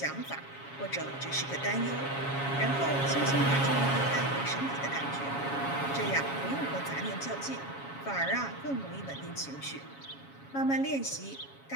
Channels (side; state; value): right; late; 7.2 ms